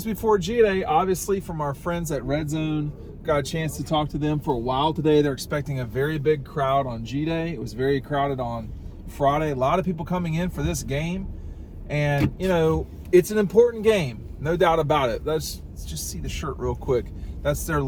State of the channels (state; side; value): identical; both; correlation 1.00